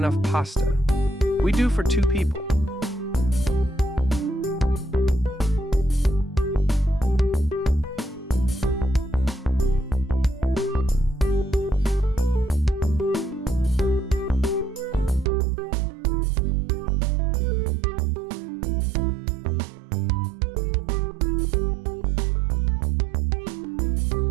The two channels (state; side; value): drops out; left; at 15.3 s